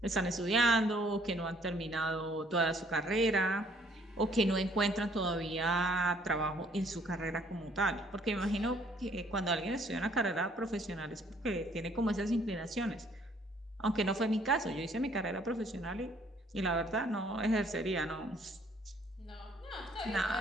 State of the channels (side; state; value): both; normal; correlation 0.62